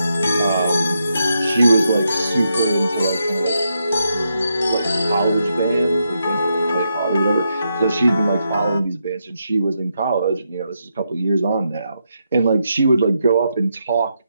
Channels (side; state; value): both; inverted; correlation -0.82